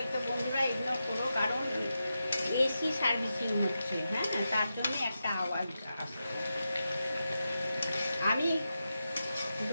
বন্ধুরা ইগনোর করো, কারণ এসি সার্ভিসিং হচ্ছে। হ্যাঁ, তার জন্য একটা আওয়াজ আসছে। আমি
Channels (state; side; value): inverted; both; correlation -0.89